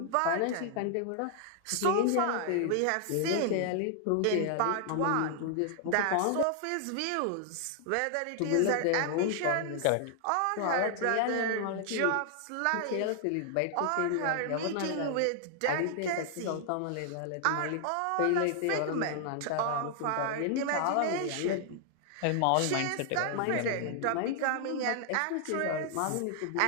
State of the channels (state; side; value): different; both; correlation 0.00